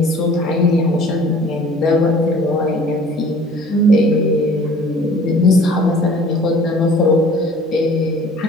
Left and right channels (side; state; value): both; normal; correlation 0.49